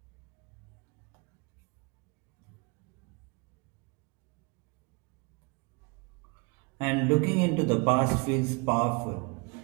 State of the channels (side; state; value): left; quieter; 30.2 dB